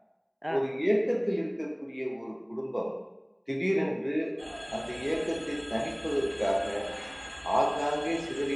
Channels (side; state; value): both; identical; correlation 1.00